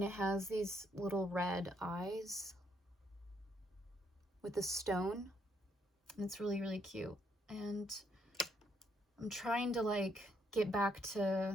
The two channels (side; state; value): both; normal; correlation 0.73